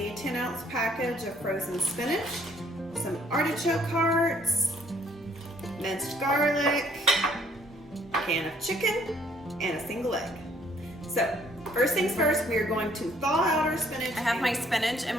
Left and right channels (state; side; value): normal; both; correlation 0.63